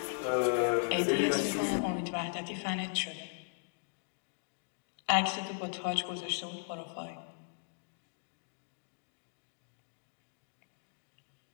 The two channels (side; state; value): right; silent; digital silence